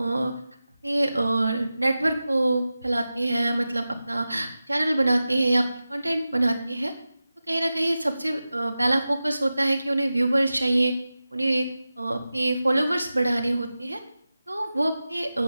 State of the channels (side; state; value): both; inverted; correlation -0.94